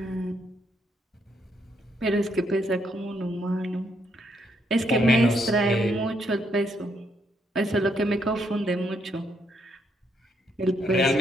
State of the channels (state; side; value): normal; both; correlation 0.75